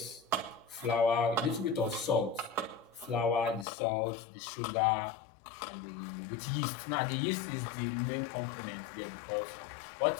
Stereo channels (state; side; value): drops out; right; at 3.7 s